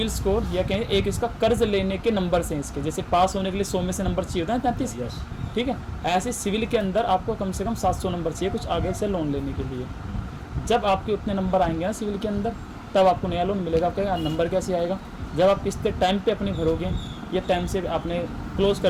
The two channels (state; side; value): identical; both; correlation 1.00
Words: स्कोर या कहें एक इसका कर्ज लेने के नंबर्स हैं इसके। जैसे पास होने के लिए 100 में से नंबर चाहिए होता है 33। ठीक है, ऐसे सिविल के अंदर आपको कम से कम 700 नंबर चाहिए कुछ आगे से लोन लेने के लिए। जब आपके उतने नंबर आएंगे ना सिविल के अंदर, तब आपको नया लोन मिलेगा। आपका नंबर कैसे आएगा? जब आप किस्तें टाइम पे अपनी भरोगे या टाइम से आपने क्लोज